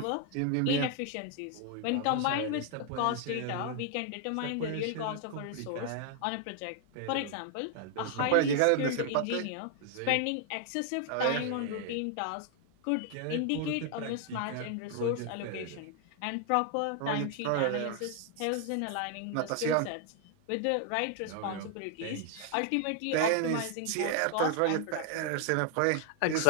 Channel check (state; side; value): different; both; correlation 0.00